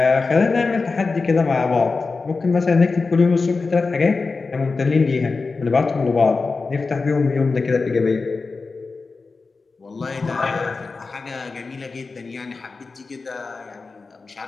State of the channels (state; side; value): quieter; right; 4.2 dB